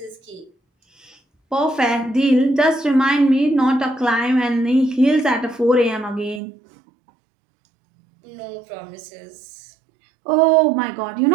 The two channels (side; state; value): left; drops out; at 6.4 s